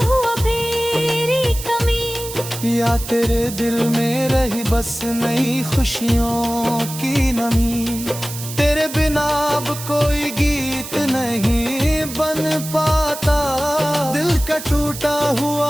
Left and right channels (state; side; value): noise; right; hiss, 10 dB below the sound